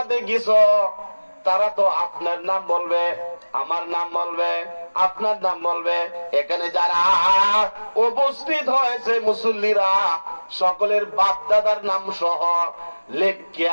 গেছো তারা তো আপনার নাম বলবে, আমার নাম বলবে, আপনার নাম বলবে। এখানে যারা উপস্থিত হয়েছে মুসল্লিরা সকলের বাপ দাদার নাম সহ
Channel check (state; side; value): inverted; both; correlation -1.00